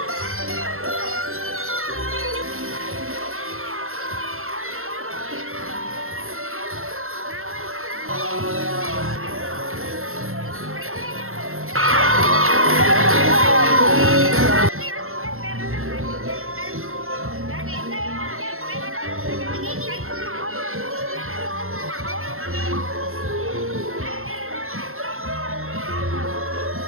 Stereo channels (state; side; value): late; left; 0.62 ms